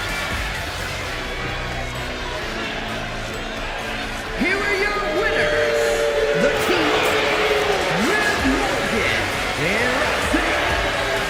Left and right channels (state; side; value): identical; both; correlation 1.00